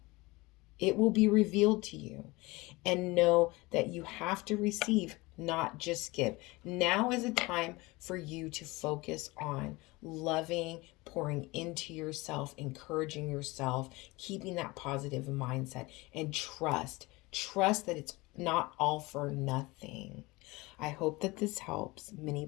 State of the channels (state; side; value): quieter; right; 22.6 dB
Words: It will be revealed to you. And know that you have to receive, not just give. Now is a time for you to focus on loving, pouring into yourself, encouraging yourself, keeping that positive mindset, and trust. Trust that it's not all for nothing. I hope that this helps. Many